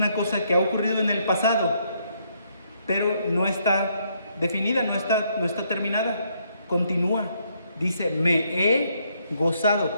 cosa que ha ocurrido en el pasado, pero no está definida, no está terminada. Continúa. Dice, me he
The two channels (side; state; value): both; inverted; correlation -0.72